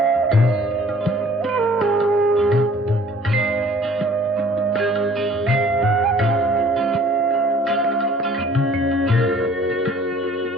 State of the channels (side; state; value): both; normal; correlation 0.53